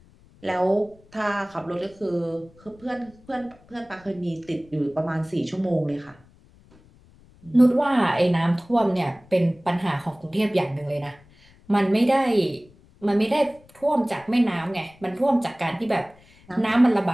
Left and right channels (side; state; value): left; noise; rumble, 27 dB below the sound